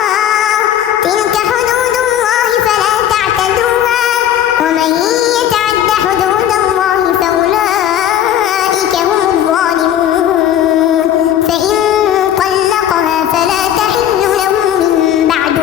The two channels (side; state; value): right; quieter; 10.7 dB